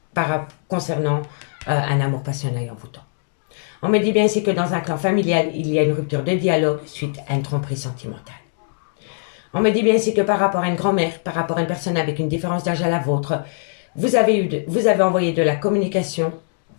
concernant un amour passionnant et envoûtant. On me dit bien ici que dans un clan familial, il y a une rupture de dialogue suite à une tromperie sentimentale. On me dit bien ici que par rapport à une grand-mère, par rapport à une personne avec une différence d'âge à la vôtre, vous avez envoyé de la communication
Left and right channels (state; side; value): silent; right; digital silence